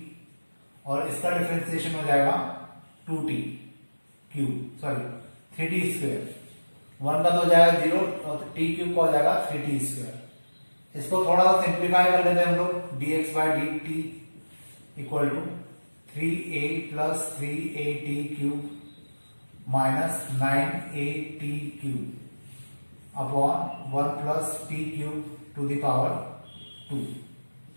और इसका डिफरेंशिएशन हो जाएगा 2t cube, sorry 3t square. 1 का तो हो जाएगा 0 और टी क्यूब का हो जाएगा 3t स्क्वायर। इसको थोड़ा सा सिंप्लीफाई कर लेते हैं हम लोग, dx by d t equal to 3a plus 3at cube minus 9at cube upon 1 plus t cube to the power 2।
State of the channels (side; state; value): both; inverted; correlation -1.00